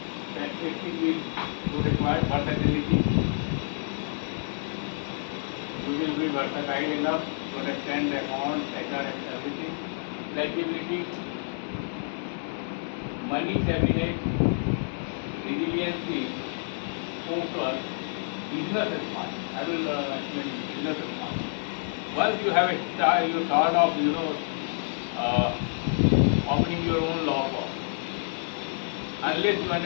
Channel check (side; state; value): right; silent; 59 dB below the other